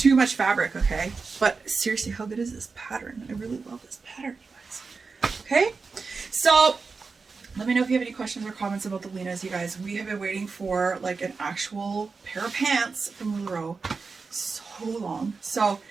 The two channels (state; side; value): quieter; left; 4.6 dB